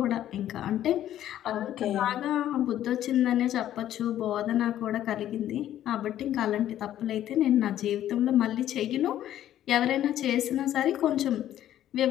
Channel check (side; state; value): right; quieter; 12.0 dB